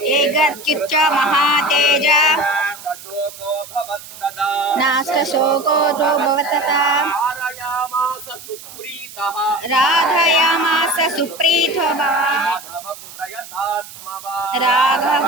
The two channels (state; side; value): noise; right; hiss, 16 dB below the sound